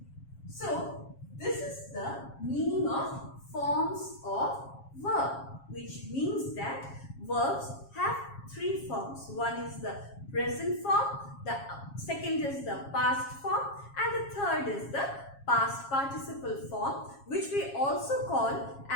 So, this is the meaning of forms of verb, which means that verbs have three forms. One is the present form, the second is the past form, and the third is the past participle form, which we also call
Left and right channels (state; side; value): late; right; 7.3 ms